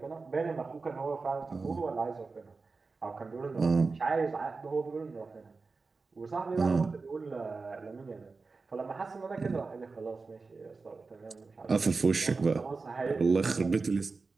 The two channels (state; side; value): quieter; left; 4.2 dB